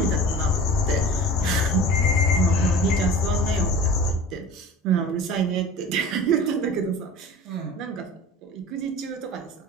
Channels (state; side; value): normal; both; correlation 0.39